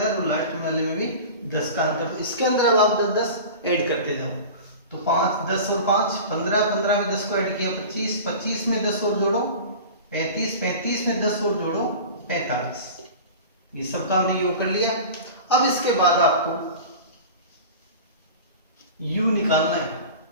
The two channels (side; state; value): both; inverted; correlation -0.35